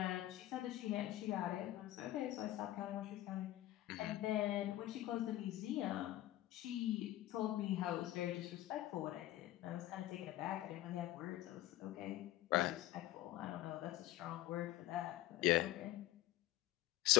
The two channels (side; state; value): right; quieter; 15.1 dB